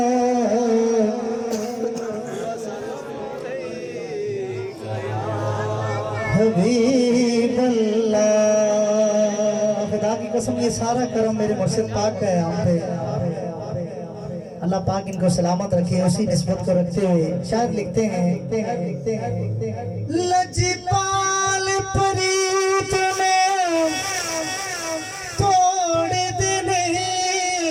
हबीब अल्लाह। खुदा की कसम ये सारा करम मेरे मुर्शिद पाक का है हम पे। अल्लाह पाक इनको सलामत रखे, उसी निस्बत को रखते हुए शायद लिखते हैं लजपाल प्रीत में तोड़ देने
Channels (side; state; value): both; identical; correlation 1.00